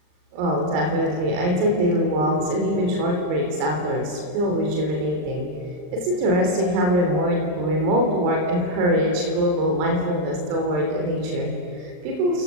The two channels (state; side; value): late; left; 39 ms